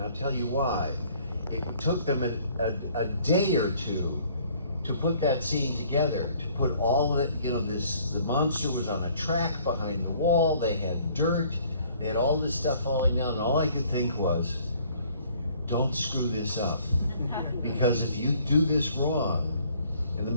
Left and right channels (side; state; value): both; inverted; correlation -0.59